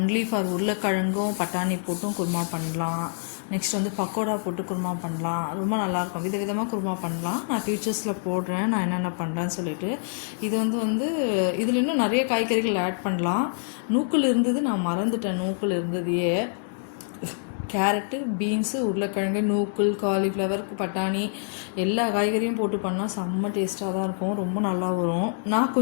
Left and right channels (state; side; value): silent; right; digital silence